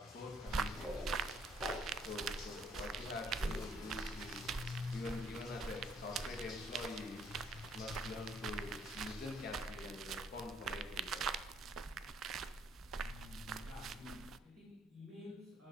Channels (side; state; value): both; normal; correlation 0.66